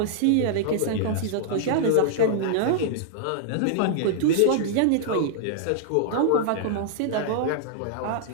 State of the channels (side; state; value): both; different; correlation -0.01